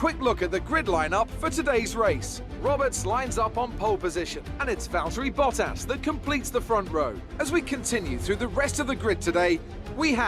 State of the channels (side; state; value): both; identical; correlation 1.00